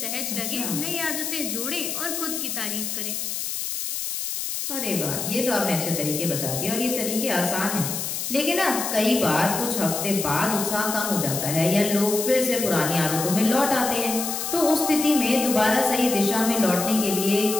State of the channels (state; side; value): noise; left; hiss, 3 dB below the sound